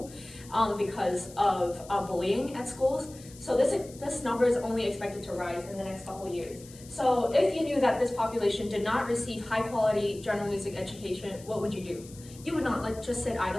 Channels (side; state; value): left; noise; hiss, 20 dB below the sound